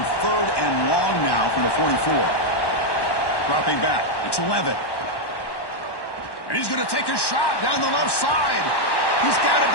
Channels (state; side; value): late; right; 1.1 ms